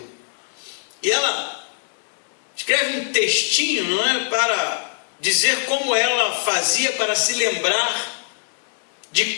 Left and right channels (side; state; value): right; silent; digital silence